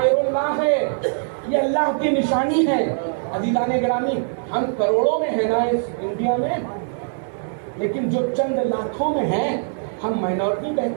اللہ ہے، یہ اللہ کی نشانی ہے۔ عزیزان گرامی، ہم کروڑوں میں ہیں نا اس انڈیا میں، لیکن جو چند لاکھوں میں ہیں، ہم مائنورٹی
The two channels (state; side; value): silent; left; 61 dB below the other